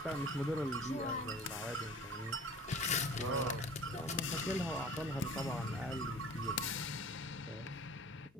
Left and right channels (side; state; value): both; normal; correlation 0.44